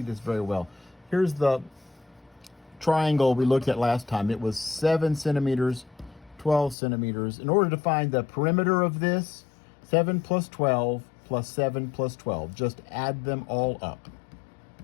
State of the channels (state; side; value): drops out; right; at 6.8 s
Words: this very well. Here's the triangle we looked at last time. It was 7 centimeters, 12 centimeters. In order to find the perimeter of this, 7 plus 12 plus 7 plus 12. Just add them all up,